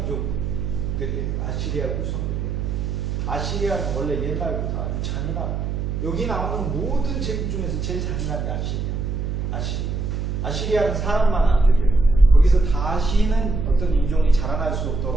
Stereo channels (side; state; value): right; noise; hum, 2 dB below the sound